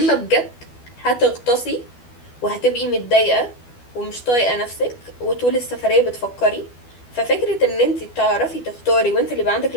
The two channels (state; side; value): late; right; 12 ms